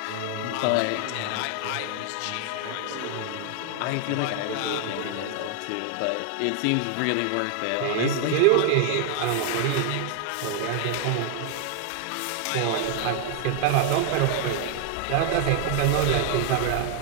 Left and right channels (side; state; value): both; different; correlation 0.00